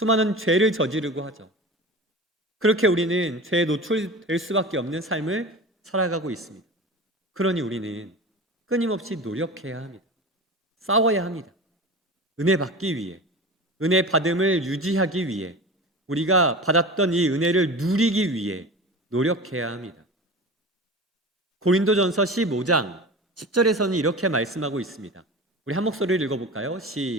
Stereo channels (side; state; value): both; normal; correlation 0.33